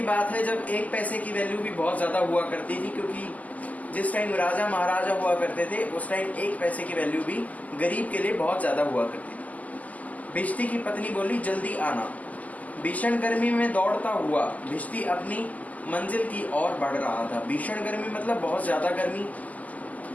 बात है जब एक पैसे की वैल्यू भी बहुत ज्यादा हुआ करती थी, क्योंकि जिस टाइम राजा महाराजा हुआ करते थे उस टाइम एक पैसे की वैल्यू भी गरीब के लिए बहुत ज्यादा हुआ करती थी. भिष्टी की पत्नी बोली, जल्दी आना. भीषण गर्मी में दौड़ता हुआ भिष्टी अपनी मंजिल की ओर बढ़ रहा था. भीषण गर्मी मतलब बहुत ज्यादा गर्मी.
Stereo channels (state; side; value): late; right; 0.077 ms